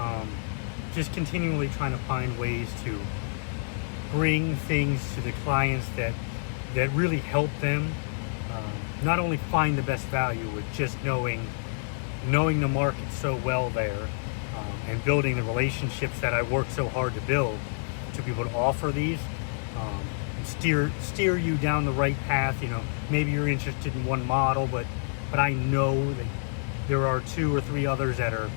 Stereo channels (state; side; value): silent; right; digital silence